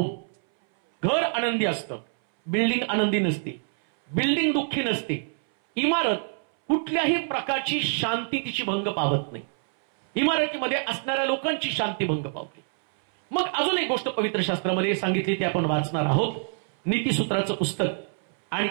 घर आनंदी असतं, बिल्डिंग आनंदी नसते, बिल्डिंग दुःखी नसते, इमारत कुठल्याही प्रकारची शांती तिची भंग पावत नाही, इमारतीमध्ये असणाऱ्या लोकांची शांती भंग पावते. मग अजून एक गोष्ट पवित्र शास्त्रामध्ये सांगितली, ती आपण वाचणार आहोत. नीतिसूत्राचं पुस्तक आणि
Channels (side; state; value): left; silent; 61 dB below the other